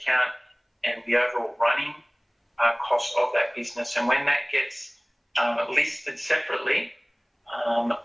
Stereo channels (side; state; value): both; identical; correlation 1.00